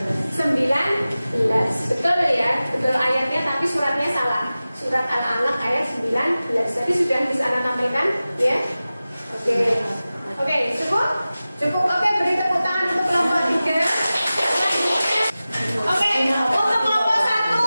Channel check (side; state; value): both; inverted; correlation -0.96